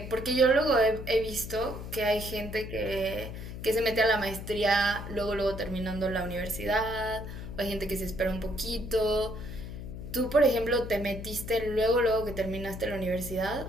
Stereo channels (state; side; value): noise; left; hum, 9 dB below the sound